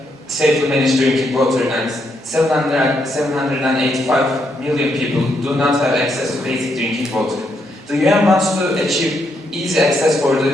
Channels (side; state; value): both; normal; correlation 0.77